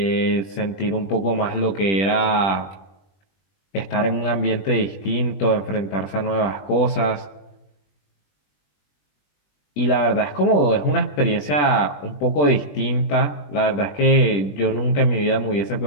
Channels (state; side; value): late; right; 21 ms